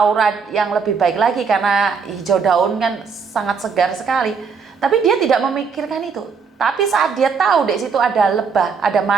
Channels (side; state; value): left; quieter; 5.7 dB